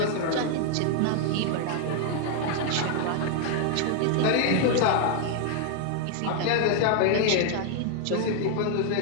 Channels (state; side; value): different; both; correlation 0.00